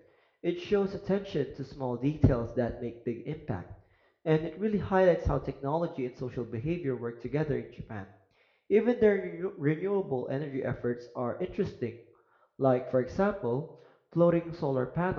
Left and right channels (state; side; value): identical; both; correlation 1.00